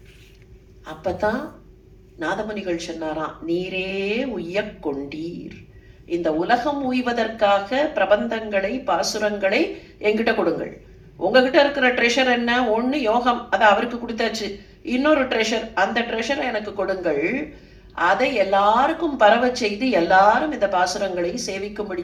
அப்பதான் நாதமுனிகள் சொன்னாராம், நீரே உய்யக் கொண்டீர், இந்த உலகம் உய்வதற்காக பிரபந்தங்களை பாசுரங்களை என்கிட்ட கொடுங்கள். உங்ககிட்ட இருக்கிற ட்ரெஷர் என்ன, ஒண்ணு யோகம், அதை அவருக்கு கொடுத்தாச்சு. இன்னொரு ட்ரெஷர், அந்த ட்ரெஷரை எனக்கு கொடுங்கள். அதை எல்லாருக்கும் பரவ செய்து எல்லாரும் இந்த பாசுரங்களை சேவிக்கும்படி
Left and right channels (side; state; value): both; identical; correlation 1.00